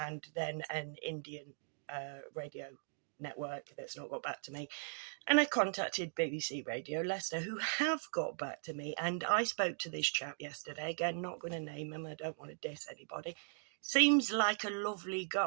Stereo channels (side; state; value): left; silent; digital silence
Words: then an Indian radio network that's not got back to me. And I contacted BBC Radio Leicester, who have got back to me, and I spoke to this chap yesterday. Again, not going to name him, I don't want to diss anybody. Seems like a lovely